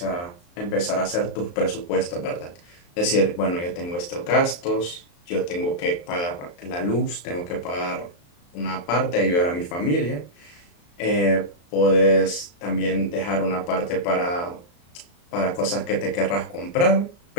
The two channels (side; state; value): right; late; 34 ms